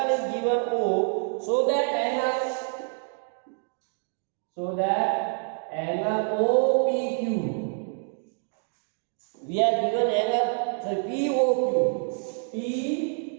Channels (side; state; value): left; silent; 60 dB below the other